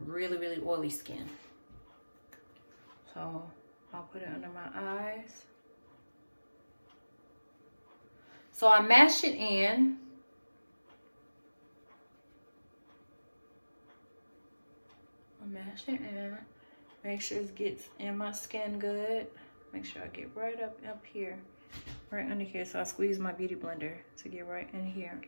really oily skin. So I'll put it under my eyes. So I mash it in. Mash it in, make sure it gets in my skin good. Make sure I get right up here, right under here. So I squeeze my beauty blender to get right in here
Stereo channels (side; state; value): both; inverted; correlation -1.00